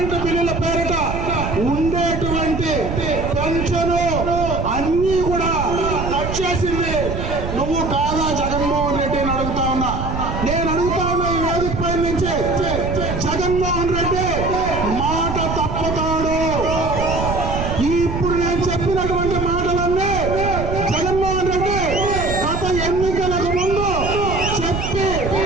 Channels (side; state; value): right; noise; rumble, 4 dB below the sound